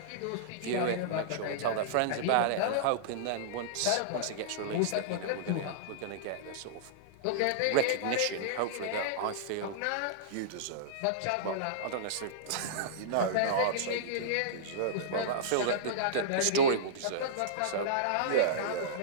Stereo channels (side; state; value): both; different; correlation -0.03